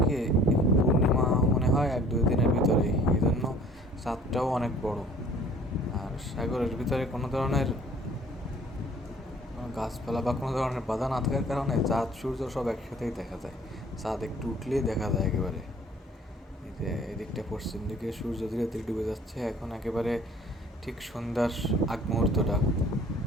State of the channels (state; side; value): normal; both; correlation 0.53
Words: কি, পূর্ণিমা মনে হয় 1-2 দিনের ভিতরেই, এই জন্য চাঁদটাও অনেক বড়। আর সাগরের ভিতরে কোনো ধরনের কোনো গাছপালা বা কোনো ধরনের বাধা না থাকার কারণে চাঁদ সূর্য সব একসাথেই দেখা যায়। চাঁদ একটু উঠলেই দেখা যায় একেবারে। এই যে এদিকটা পশ্চিম দিকে সূর্য ধীরে ধীরে ডুবে যাচ্ছে, এখন একেবারে ঠিক সন্ধ্যার আগ মুহূর্তটা।